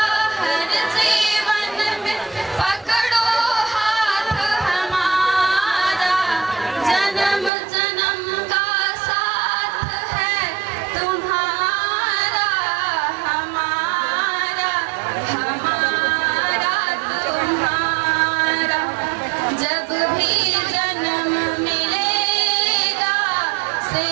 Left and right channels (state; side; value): drops out; left; at 7.5 s